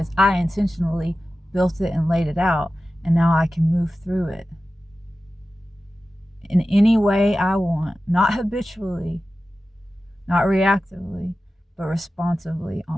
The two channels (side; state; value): both; normal; correlation 0.94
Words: I intentionally built it and laid it out, and now I can move through it in any way I want, not habitually, not reactively, but responsively